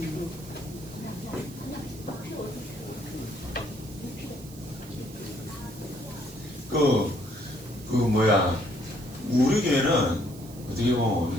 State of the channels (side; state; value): right; noise; hiss, 19 dB below the sound